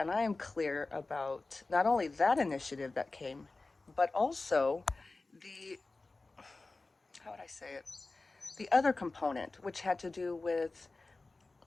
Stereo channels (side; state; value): right; quieter; 3.4 dB